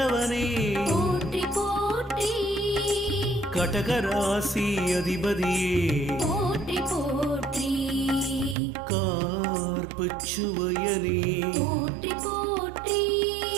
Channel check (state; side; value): drops out; left; at 8.6 s